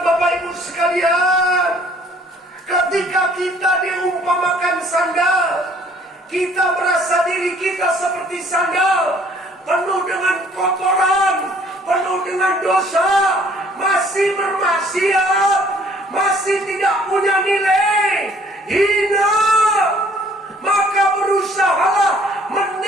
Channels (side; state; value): both; normal; correlation 0.59